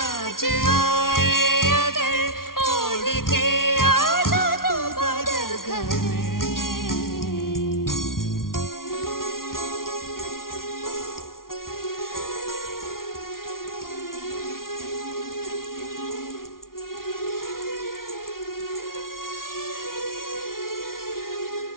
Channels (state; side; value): late; right; 0.92 ms